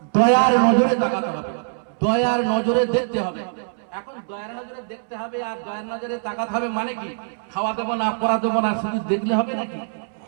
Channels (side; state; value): left; silent; 64 dB below the other